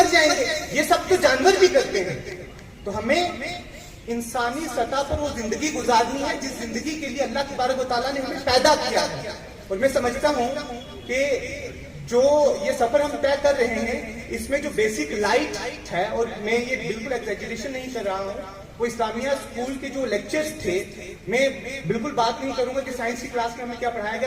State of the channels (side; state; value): both; identical; correlation 1.00